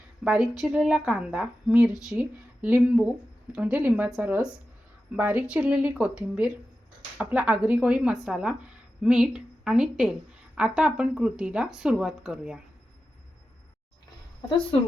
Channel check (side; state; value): both; normal; correlation 0.92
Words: बारीक चिरलेला कांदा, मिरची, लिंबू म्हणजे लिंबाचा रस, बारीक चिरलेली कोथिंबीर, आपला आगरी कोळी मसाला, मीठ आणि तेल। आता आपण कृतीला सुरुवात करूया। आता